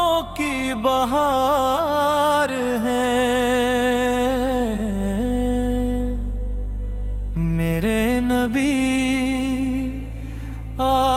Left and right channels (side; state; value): both; identical; correlation 1.00